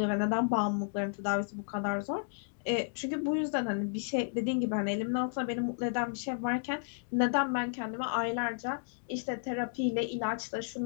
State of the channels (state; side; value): silent; right; digital silence